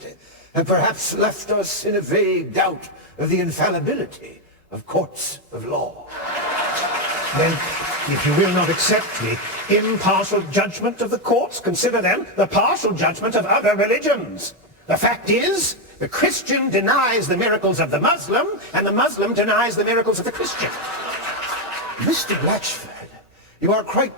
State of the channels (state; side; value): normal; both; correlation 0.05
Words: have perhaps left us in a vague doubt of the infallibility of courts of law. Then, if you will not accept the impartial judgment of the courts, consider then the partial judgment of other religions. The fact is, the Christian denies the miracles of the Muslim, and the Muslim denies the miracles of the Christian. Mr. Blachford, you are quite